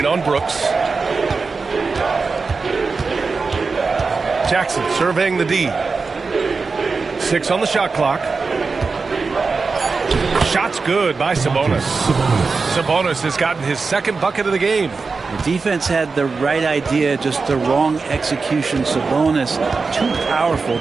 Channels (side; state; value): left; quieter; 4.4 dB